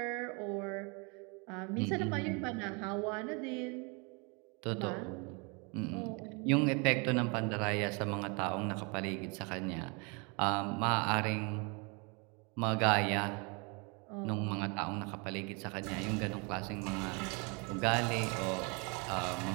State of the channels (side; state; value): left; quieter; 31.7 dB